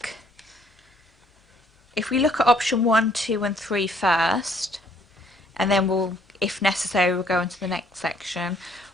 if we look at option 1, 2 and 3 first, and then we'll, if necessary, we'll go into the next section.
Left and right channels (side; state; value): both; normal; correlation 0.64